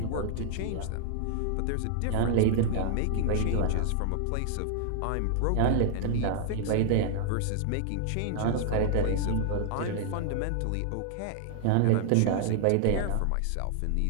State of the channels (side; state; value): both; different; correlation -0.01